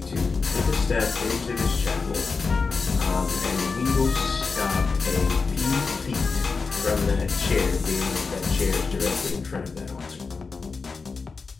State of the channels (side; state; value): right; quieter; 4.6 dB